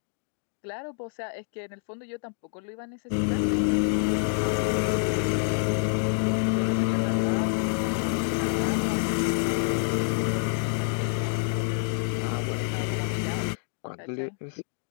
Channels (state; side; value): silent; right; digital silence